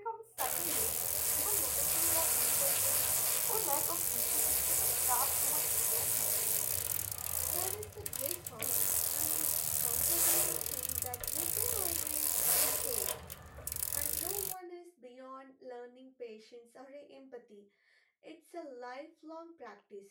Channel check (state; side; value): identical; both; correlation 1.00